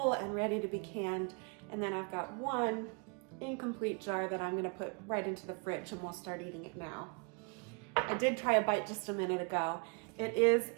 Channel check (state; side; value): quieter; left; 35.3 dB